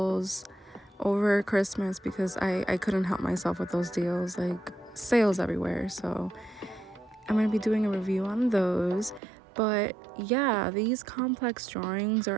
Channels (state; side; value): drops out; left; at 9.2 s